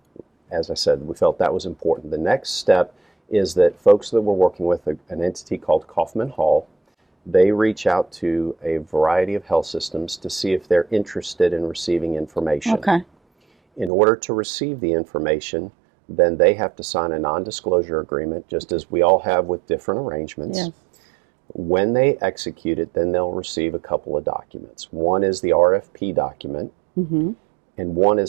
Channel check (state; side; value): drops out; left; at 13.9 s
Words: As I said, we felt that was important. The next step is that folks that we're working with, an entity called Kaufman Hall, they reach out to a variety of health systems to see if they're interested in receiving information. Okay. In order to receive the information, then they have to sign a non-disclosure agreement, just as we all have with different arrangements. Yes. When they execute it, then they'll receive a couple of documents. One is the RFP document, mm-hmm. and one